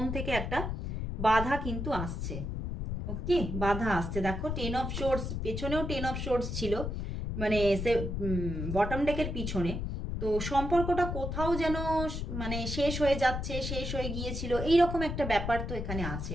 থেকে একটা বাধা কিন্তু আসছে। ওকে, বাধা আসছে। দেখো 10 অফ শোর্টস, পেছনেও 10 অফ শোর্টস ছিল, মানে সে বটম ডেকের পিছনে। তো সম্পর্কটা কোথাও যেন মানে শেষ হয়ে যাচ্ছে, শেষ হয়ে গিয়েছিল, এইরকম একটা ব্যাপার তো এখানে আছে।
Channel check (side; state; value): left; noise; rumble, 3 dB below the sound